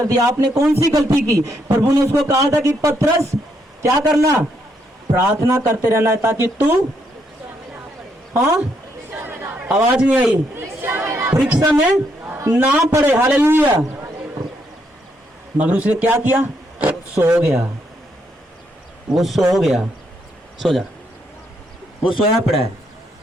दिया, आपने कौन सी गलती की? प्रभु ने उसको कहा था कि पतरस क्या करना? प्रार्थना करते रहना है ताकि तू, हाँ आवाज नहीं आई, परीक्षा में ना पड़े। हालेलुया। मगर उसने क्या किया? सो गया। वो सो गया। सो जा, वो सोया पड़ा है।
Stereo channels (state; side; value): normal; both; correlation 0.75